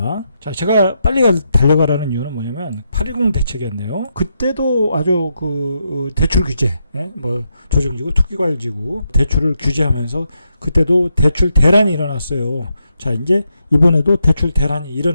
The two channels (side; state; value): both; inverted; correlation -0.82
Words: 제가 빨리 달려가라는 이유는 뭐냐면 8.10 대책이었네요. 그때도 아주 그 대출 규제, 조정지구, 투기과열지구 대출을 규제하면서 그때도 대출 대란이 일어났어요. 이제 이번에도 대출 대란이